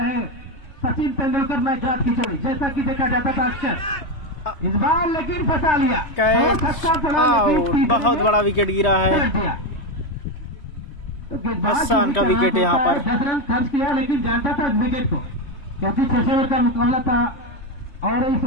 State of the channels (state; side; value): late; right; 3.1 ms